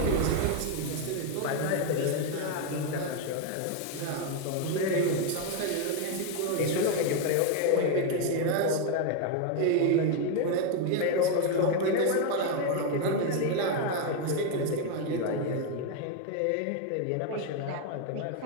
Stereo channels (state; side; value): different; both; correlation 0.01